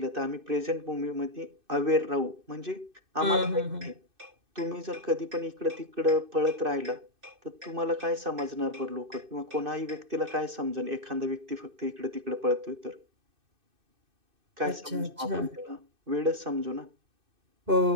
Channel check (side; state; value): left; late; 2.6 ms